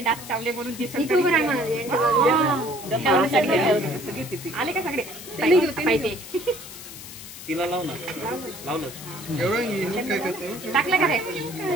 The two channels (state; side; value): noise; left; hiss, 13 dB below the sound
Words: चावले म्हणून दिसत आले का सगळे तिला लाव ना लावलं टाकलं का रे